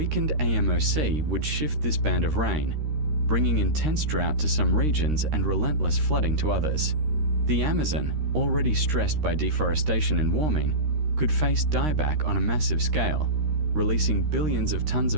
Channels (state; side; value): late; left; 13 ms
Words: AMOC would shift this band of rain, bringing intense drought to some regions and relentless flooding to others. The Amazon, already stressed by deforestation and warming, could face dieback on a massive scale, releasing billions of tons